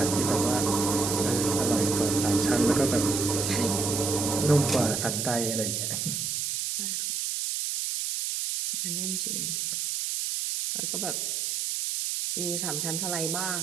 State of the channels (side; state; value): right; noise; hiss, 1 dB below the sound